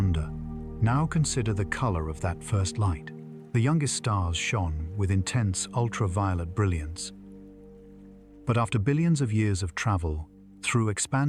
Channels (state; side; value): identical; both; correlation 1.00